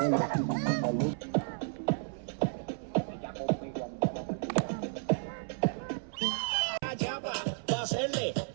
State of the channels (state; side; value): silent; left; 56 dB below the other